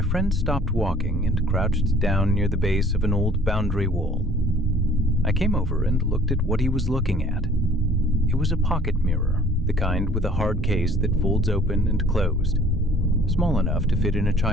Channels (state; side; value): normal; both; correlation 0.54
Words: friend stopped walking and crouched down near the base of an old boundary wall. I came over and looked at what he was looking at. It was a pocket mirror, the kind with a hard case that folds open and closed, small enough to fit in a